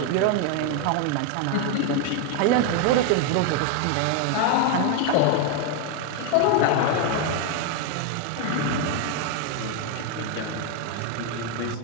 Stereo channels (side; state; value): both; different; correlation 0.01